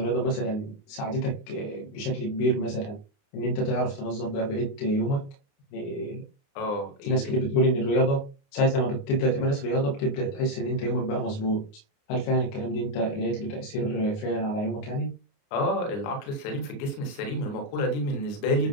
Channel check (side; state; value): right; late; 29 ms